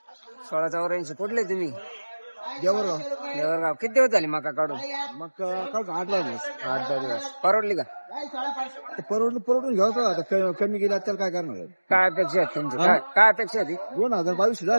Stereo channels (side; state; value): both; inverted; correlation -1.00